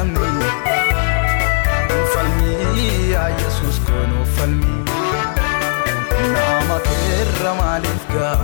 no falmi ya Jesus ko no falmi nama kirra malif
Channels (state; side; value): silent; right; digital silence